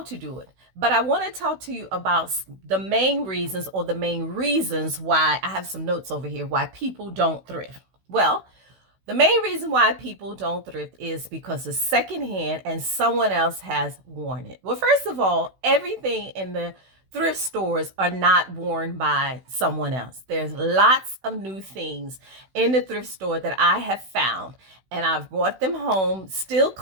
to do it. But I want to talk to you about the main reasons why I have some notes over here, why people don't thrift. Well, the main reason why people don't thrift is because it's secondhand and someone else has worn it. Well, first of all, everything in the thrift stores are not worn by someone else. There's lots of new things in the thrift store that I have found, and I've brought them home, still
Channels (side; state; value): left; late; 16 ms